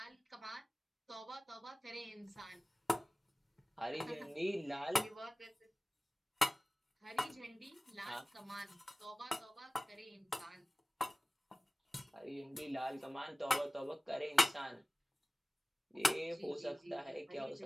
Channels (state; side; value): normal; both; correlation 0.97